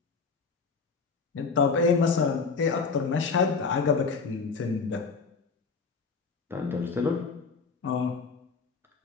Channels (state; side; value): quieter; right; 4.8 dB